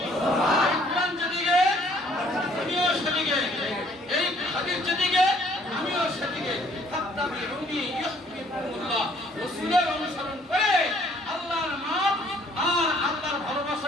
অনুসরণ করে আল্লাহর মাপ আর আল্লাহর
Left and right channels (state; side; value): normal; both; correlation 0.61